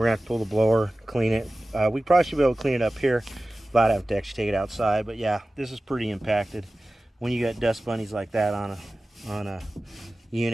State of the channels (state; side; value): normal; both; correlation 0.96